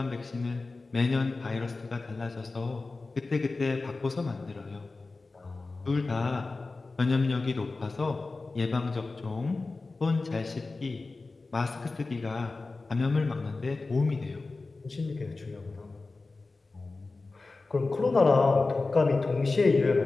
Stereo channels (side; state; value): right; quieter; 3.6 dB